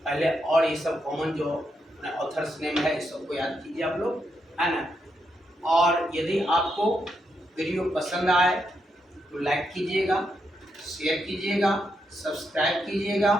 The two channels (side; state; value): both; normal; correlation 0.81